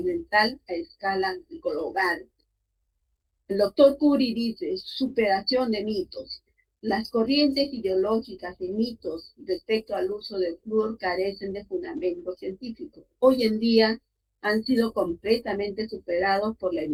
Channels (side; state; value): both; identical; correlation 1.00